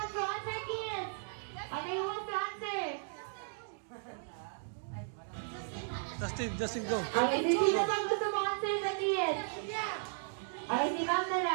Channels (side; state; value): left; silent; digital silence